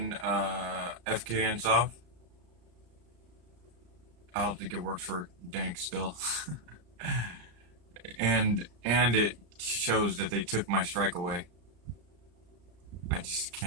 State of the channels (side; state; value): left; late; 34 ms